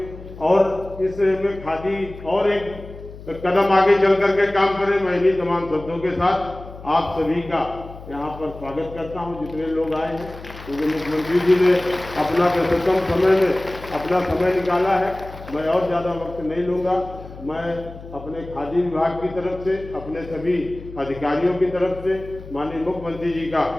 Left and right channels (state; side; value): noise; left; hum, 15 dB below the sound